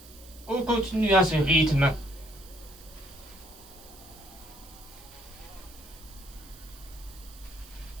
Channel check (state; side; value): noise; right; hiss, 20 dB below the sound